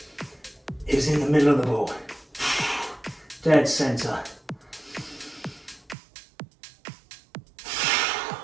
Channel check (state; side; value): drops out; left; at 6.0 s